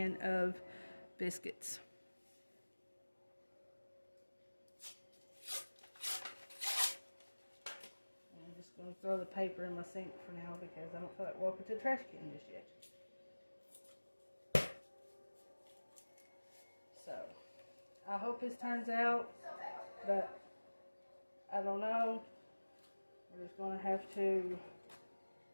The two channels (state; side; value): inverted; both; correlation -1.00